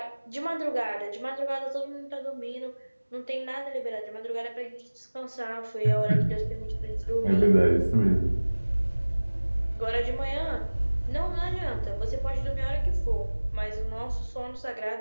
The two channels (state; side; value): inverted; both; correlation -1.00